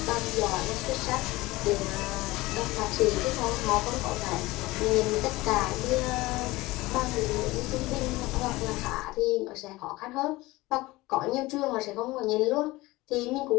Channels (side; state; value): right; quieter; 20.1 dB